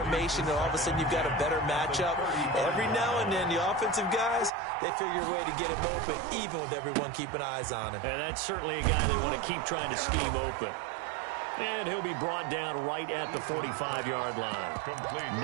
and all of a sudden you've got a better matchup. Every now and then, the offensive guys, they figure a way to get him open, even with everyone everyone keeping eyes on him. And that's certainly a guy they want to keep trying to scheme open. And he'll be brought down right at the 45-yard line.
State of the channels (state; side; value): drops out; left; at 4.5 s